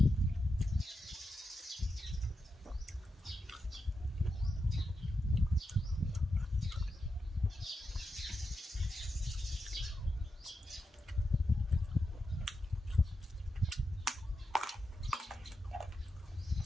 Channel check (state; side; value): normal; both; correlation 0.87